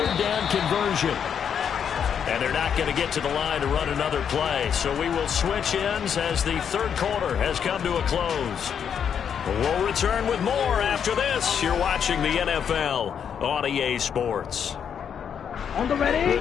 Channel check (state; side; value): quieter; right; 7.8 dB